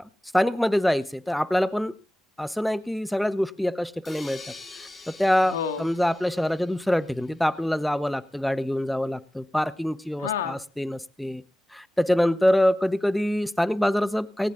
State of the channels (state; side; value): normal; both; correlation 0.96